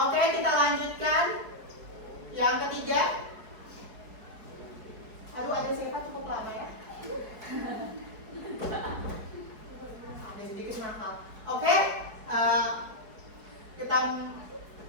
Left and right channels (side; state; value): left; late; 4.7 ms